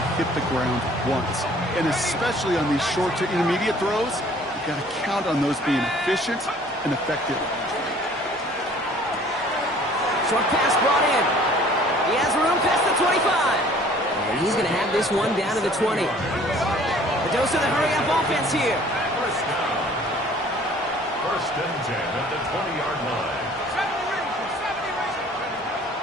hit the ground once. And especially on these short to intermediate throws, you've got to count on those being efficient and effective. Short pass brought in. He has room past the 25. And he's going to have this one down to the 20. The dose of the hurry-up offense here. First and 10 at the 20-yard line.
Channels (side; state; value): both; normal; correlation 0.53